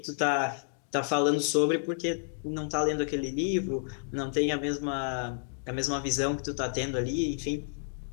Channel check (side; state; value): right; silent; digital silence